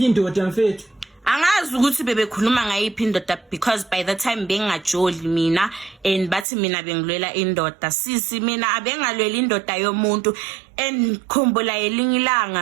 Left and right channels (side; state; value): left; drops out; at 6.5 s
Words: indoda mfethu angazi ukuthi bebekhuluma ngayiphi indoda because by the time bengajoli mina and bathi mina bengilwela indoda sisi mina abengalwela indoda yomuntu khumbula elinye